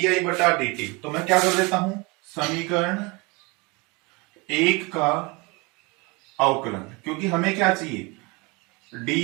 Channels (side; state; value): left; quieter; 26.8 dB